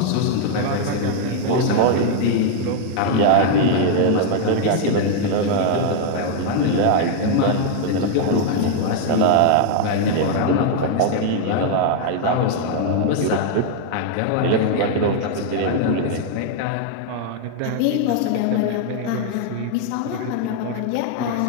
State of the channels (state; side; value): different; both; correlation 0.00